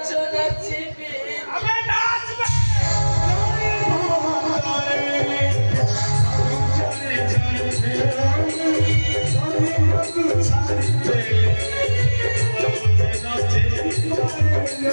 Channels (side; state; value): both; inverted; correlation -1.00